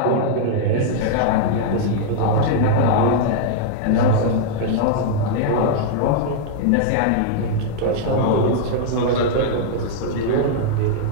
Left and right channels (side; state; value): both; different; correlation -0.01